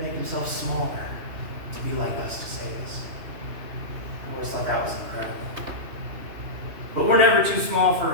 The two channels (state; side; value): late; left; 3.0 ms